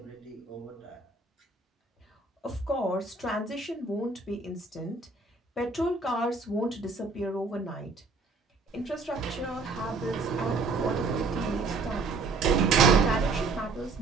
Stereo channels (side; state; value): left; quieter; 3.9 dB